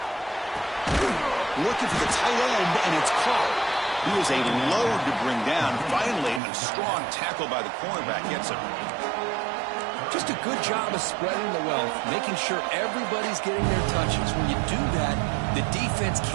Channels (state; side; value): drops out; left; at 6.4 s